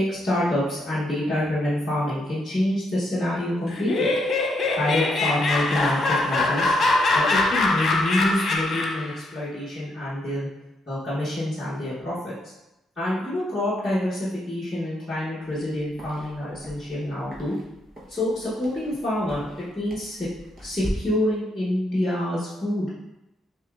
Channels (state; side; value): normal; both; correlation 0.77